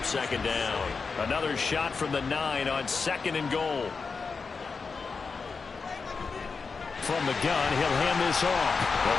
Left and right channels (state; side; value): quieter; right; 4.9 dB